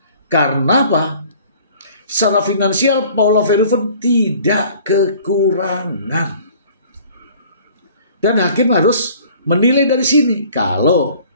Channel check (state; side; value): inverted; both; correlation -0.51